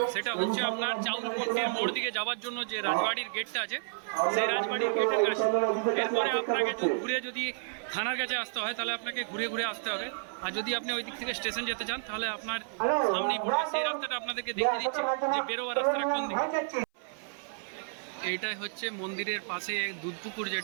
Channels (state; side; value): silent; left; 57 dB below the other